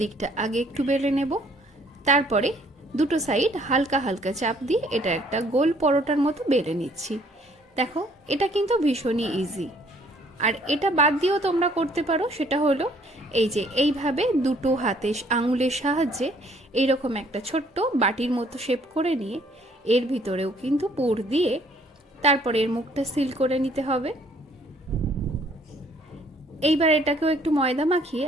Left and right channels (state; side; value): normal; both; correlation 0.62